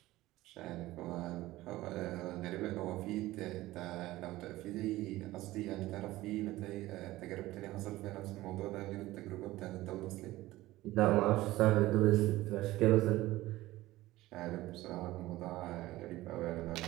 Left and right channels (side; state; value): left; quieter; 17.3 dB